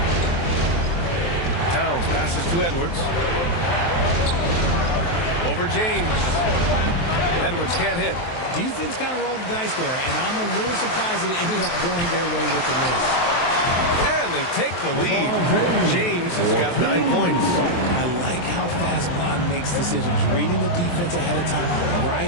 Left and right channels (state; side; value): late; right; 23 ms